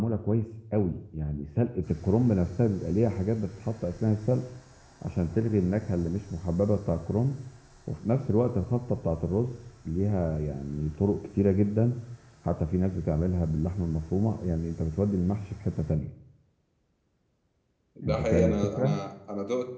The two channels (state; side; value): identical; both; correlation 1.00